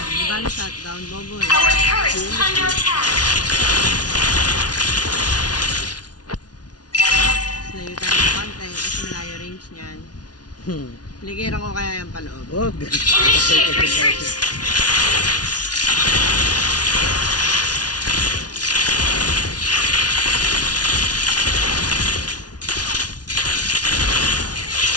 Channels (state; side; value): late; right; 0.69 ms